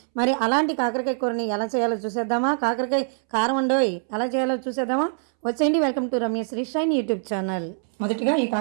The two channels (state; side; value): silent; left; 63 dB below the other